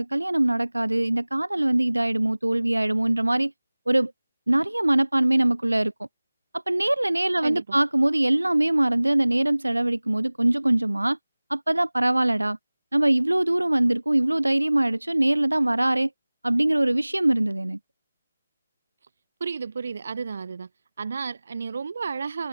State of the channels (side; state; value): both; inverted; correlation -1.00